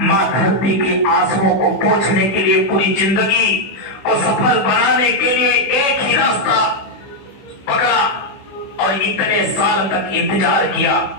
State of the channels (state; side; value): late; right; 15 ms